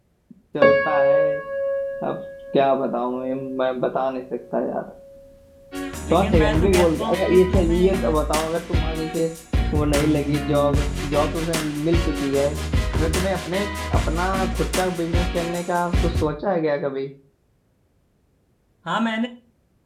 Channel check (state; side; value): identical; both; correlation 1.00